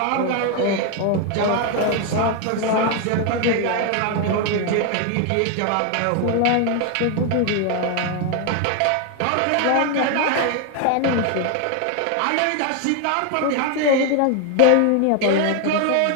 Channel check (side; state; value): both; different; correlation 0.00